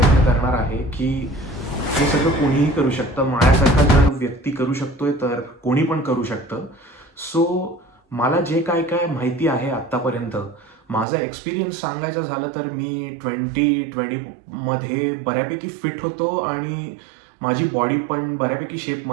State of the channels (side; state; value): left; drops out; at 11.1 s